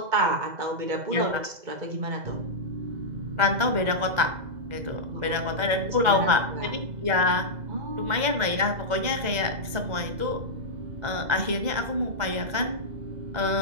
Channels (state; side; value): late; left; 2.0 ms